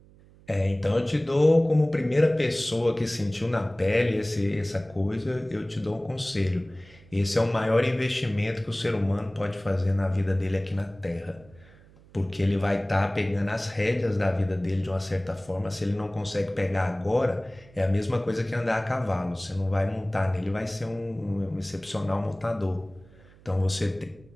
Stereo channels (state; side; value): noise; right; hum, 25 dB below the sound